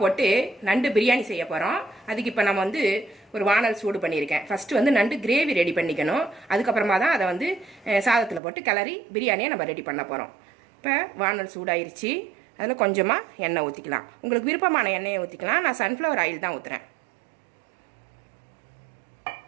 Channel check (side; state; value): left; drops out; at 8.4 s